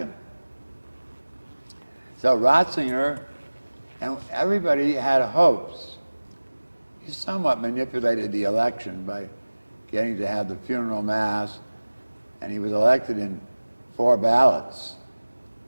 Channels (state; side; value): inverted; both; correlation -1.00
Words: So Ratzinger, and everybody had hopes. He somewhat manipulated the election by getting to have the funeral mass, and he was elected in 4 ballots,